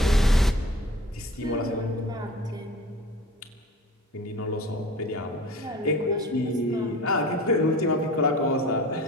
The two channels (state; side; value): normal; both; correlation 0.42